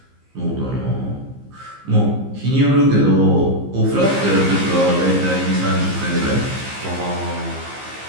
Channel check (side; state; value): left; late; 15 ms